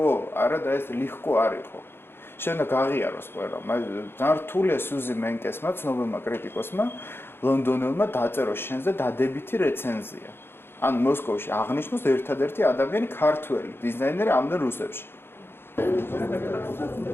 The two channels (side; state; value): right; late; 0.11 ms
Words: არა და ეს легко არ იყო. შენ გაღიაროს ყველა. ძალიან რთულია სუზი მენკესმა, ცნობილმა კრიტიკოსმა, ლონდონელმა დაწერო შენზე დადებითი რეცენზია. ანუ მოსკოვში აღნიშნოს ერთადერთი ადამიანი ქართველი დიზაინერი ამდენ რუსებში.